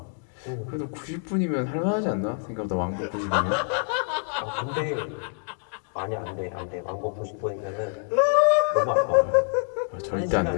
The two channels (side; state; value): right; silent; 55 dB below the other